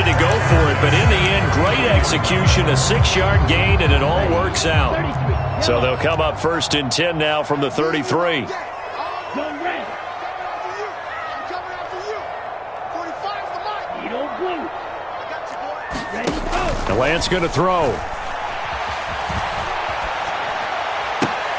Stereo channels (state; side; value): identical; both; correlation 1.00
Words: to go for it, but in the end, great execution, a 6-yard gain, and it all works out. So they'll come up 1st and 10 now from the 33. And Lance going to throw.